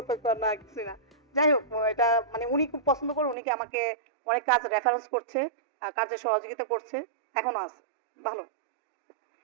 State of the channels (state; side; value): drops out; left; at 3.4 s